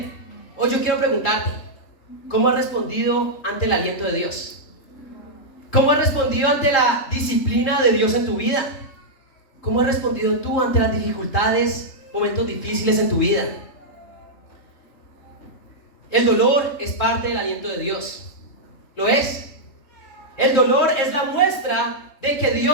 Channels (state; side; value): late; right; 3.8 ms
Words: Hoy yo quiero preguntarte, ¿cómo has respondido ante el aliento de Dios? ¿Cómo has respondido ante la disciplina de Dios en tu vida? ¿Cómo has respondido tú ante las dificultades, momentos difíciles en tu vida? El dolor es parte del aliento de Dios. ¿Lo es? El dolor es la muestra de que